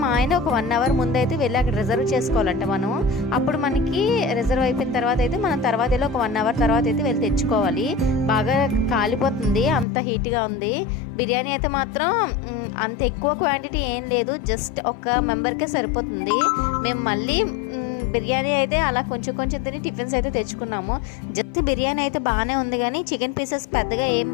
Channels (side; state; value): right; drops out; at 9.9 s